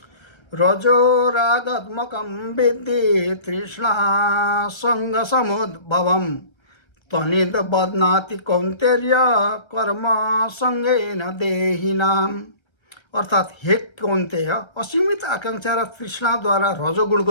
रजो रागात्मकं विद्धि तृष्णा सङ्गसमुद्भवं तनिद बध्नाति कौन्तेय कर्म सङ्गेन देहिनाम्। अर्थात् हे कौन्तेय, असीमित आकांक्षा र तृष्णाद्वारा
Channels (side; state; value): right; late; 1.3 ms